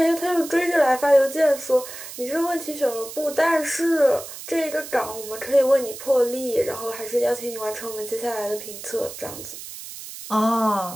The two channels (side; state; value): right; noise; hiss, 12 dB below the sound